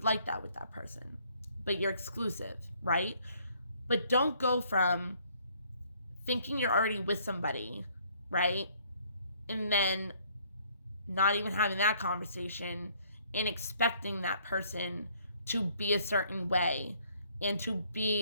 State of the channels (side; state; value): both; inverted; correlation -0.63